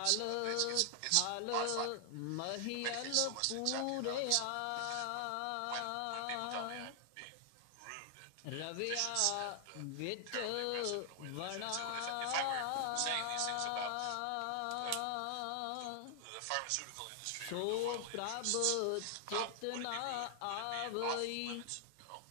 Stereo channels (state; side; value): different; both; correlation 0.00